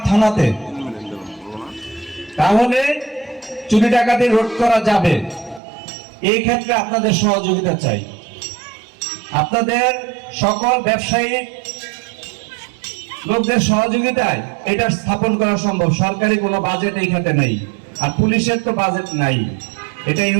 থানাতে, তাহলে চুরি ডাকাতি রোধ করা যাবে। এই ক্ষেত্রে আপনাদের সহযোগিতা চাই। আপনাদের সকল ব্যবসায়ী লোকদের সহযোগিতায় এটা স্থাপন করা সম্ভব। সরকারি কোনো বাজেট এই খাতে নেই, আর পুলিশের তো বাজেট নাই। এটা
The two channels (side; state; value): left; drops out; at 5.6 s